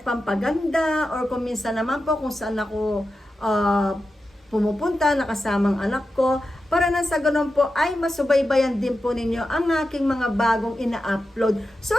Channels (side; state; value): both; normal; correlation 0.91